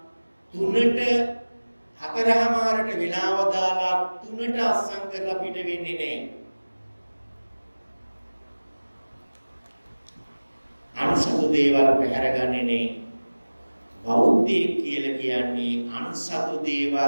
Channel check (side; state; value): both; inverted; correlation -1.00